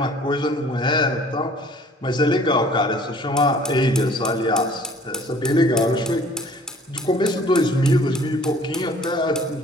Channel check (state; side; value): normal; both; correlation 0.53